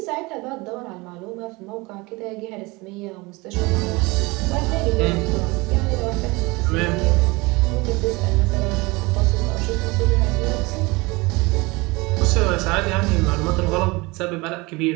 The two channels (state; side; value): quieter; left; 24.2 dB